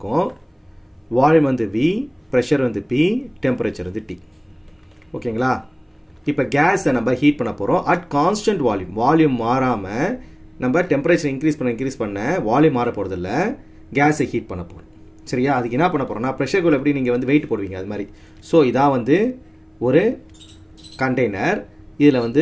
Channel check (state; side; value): identical; both; correlation 1.00